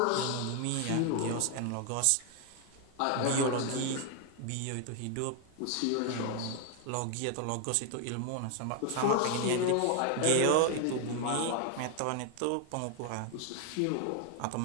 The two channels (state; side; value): different; both; correlation 0.00